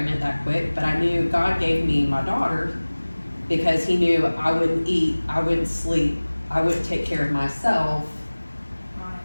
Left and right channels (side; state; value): both; inverted; correlation -1.00